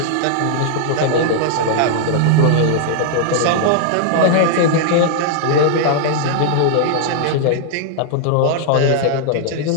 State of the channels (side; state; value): both; different; correlation -0.01